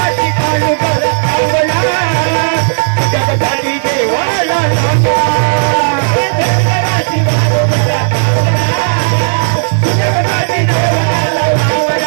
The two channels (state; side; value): silent; left; digital silence